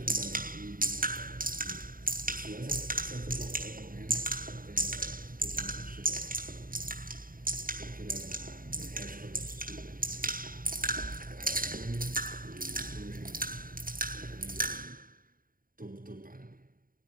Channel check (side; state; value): left; late; 0.41 ms